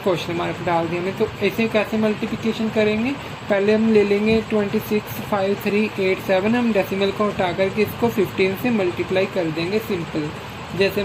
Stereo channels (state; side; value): identical; both; correlation 1.00